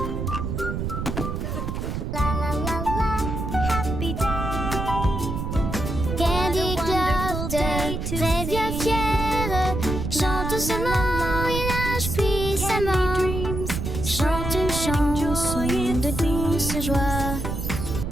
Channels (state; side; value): noise; right; rumble, 3 dB below the sound